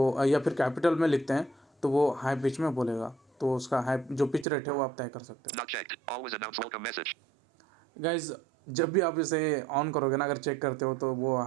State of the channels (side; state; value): left; drops out; at 4.5 s